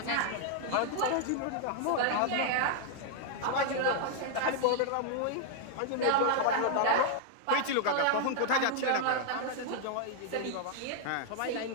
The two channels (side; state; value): both; different; correlation 0.00